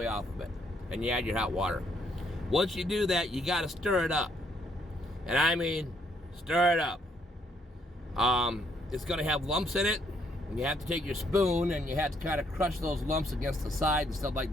off of it and you add your hot water. Once you do that, you got to stir it up. And I mean, stir it up. It's going to have lumps in it. And you have to take your spoon and you have to kind of crush those lumps against the side and stuff like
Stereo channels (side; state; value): both; normal; correlation 0.71